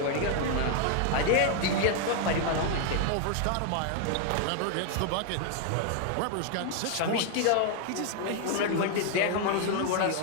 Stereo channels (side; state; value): both; different; correlation 0.00